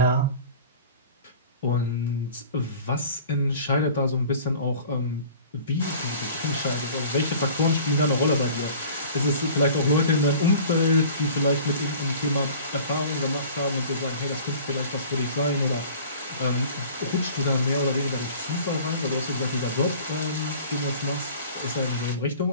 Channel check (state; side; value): inverted; both; correlation -0.44